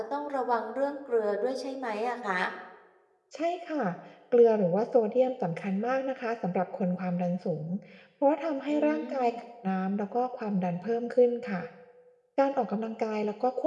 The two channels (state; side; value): identical; both; correlation 1.00